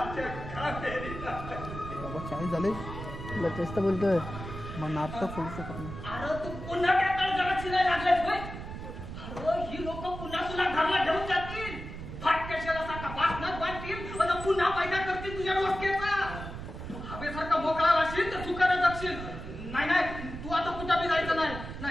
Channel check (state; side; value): noise; right; rumble, 9 dB below the sound